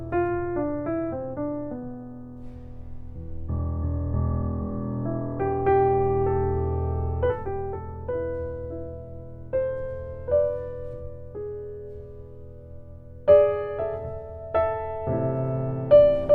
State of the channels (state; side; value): identical; both; correlation 1.00